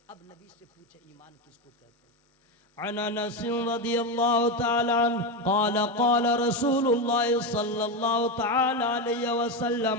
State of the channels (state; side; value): normal; both; correlation 0.13